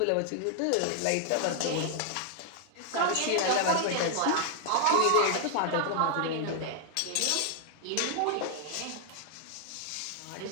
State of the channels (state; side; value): different; both; correlation 0.00